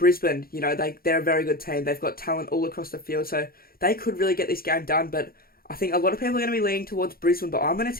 you know, they're a very good team. They've got talent all across the field, so they could really get this game done. But I think a lot of people are going to be leaning towards Brisbane, but I'm going to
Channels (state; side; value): late; right; 0.43 ms